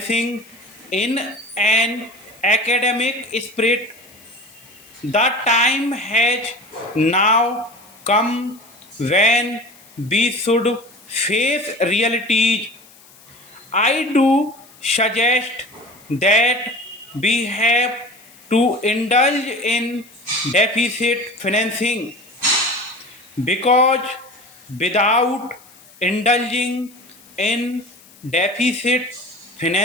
in an academic spirit. The time has now come when we should face realities. I do suggest that we have to indulge in deficit financing, because without indulging in deficit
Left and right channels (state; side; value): noise; left; hiss, 25 dB below the sound